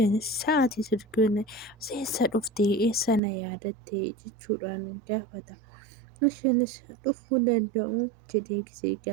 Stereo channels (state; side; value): drops out; left; at 3.2 s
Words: sa'aatii sirgina seessa dhuftee eessa na yaadatte jechuudhaan gaafata. Isheenis dhufuu danda'u jedhee gisee